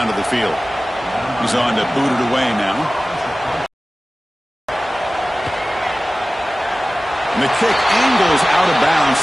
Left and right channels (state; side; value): normal; both; correlation 0.97